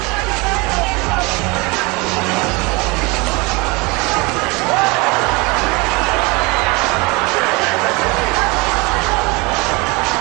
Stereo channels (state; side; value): quieter; left; 26.4 dB